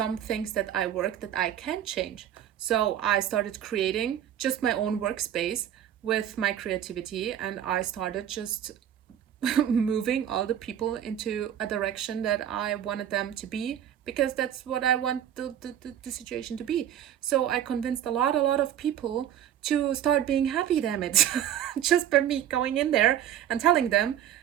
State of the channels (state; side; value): quieter; left; 10.4 dB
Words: things that I work that I can change? So I started creating just my own workspace with my creativity, and I started just moving all the people into a direction that I wanted them to be, because that's what I want the situation to be. So I convinced a lot of people to start being happy, damn it. Just by me going in there and telling them,